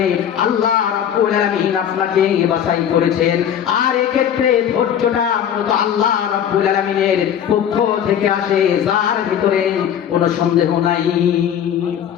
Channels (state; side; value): quieter; right; 9.3 dB